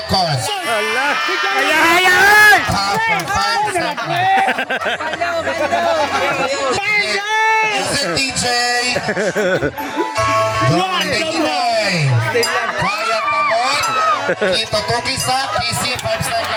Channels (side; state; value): both; identical; correlation 1.00